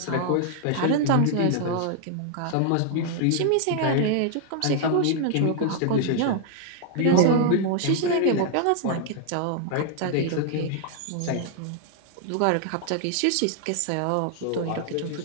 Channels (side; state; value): both; different; correlation 0.00